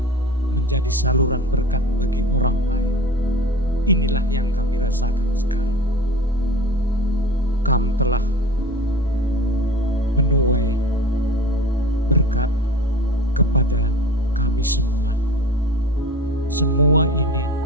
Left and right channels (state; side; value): normal; both; correlation 0.36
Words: menjadi saluran berkat bagi orang lain. Inilah yang kami rasakan sekarang. Kamu telah menuai berkat kepada kami semua. Semua ini